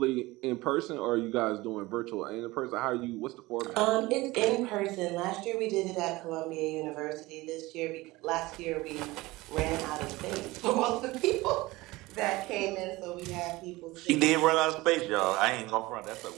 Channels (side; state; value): left; quieter; 20.3 dB